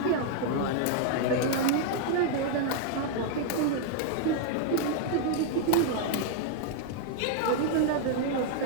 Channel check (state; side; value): different; both; correlation 0.00